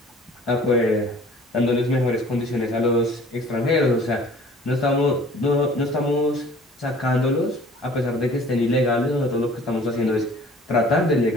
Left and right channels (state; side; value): normal; both; correlation 0.50